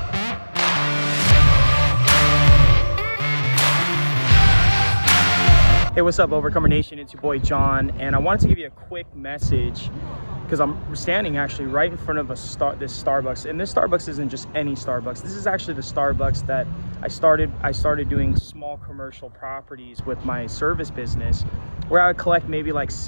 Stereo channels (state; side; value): inverted; both; correlation -1.00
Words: Hey, what's up, Overcomer Nation? It's your boy John, and I wanted to give you a quick message because I'm standing actually right in front of this Starbucks, and this Starbucks isn't just any Starbucks. This is actually the Starbucks that I started doing small commercial properties with my service business, where I would collect maybe like